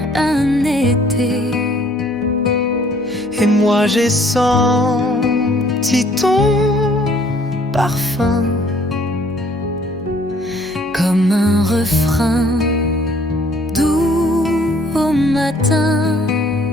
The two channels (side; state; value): both; normal; correlation 0.60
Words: un été. moi j'ai senti ton parfum comme un refrain doux au matin.